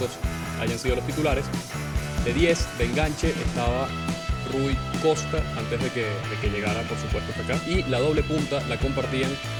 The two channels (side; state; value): both; identical; correlation 1.00